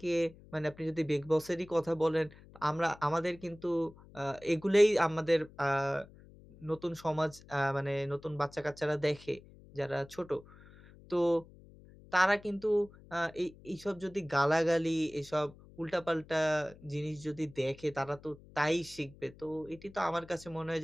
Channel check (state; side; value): noise; left; hum, 22 dB below the sound